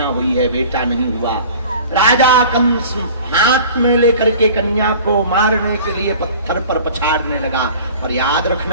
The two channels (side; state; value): both; inverted; correlation -0.43